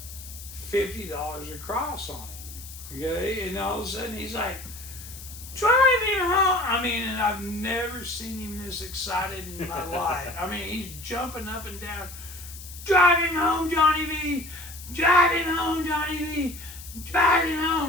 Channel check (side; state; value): left; noise; hiss, 14 dB below the sound